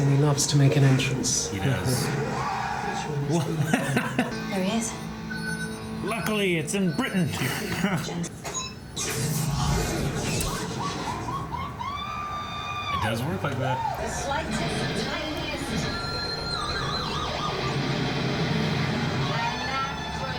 And he loves to make an entrance. He does. There he is. Luckily, it's in Britain. It does work like that. The slightest, tiniest.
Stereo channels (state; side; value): identical; both; correlation 1.00